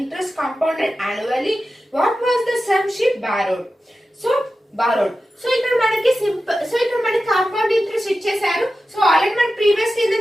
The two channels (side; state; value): both; normal; correlation 0.93